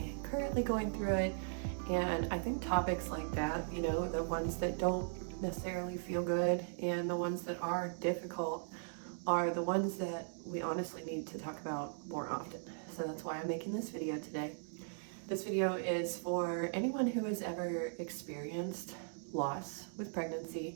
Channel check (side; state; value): left; silent; digital silence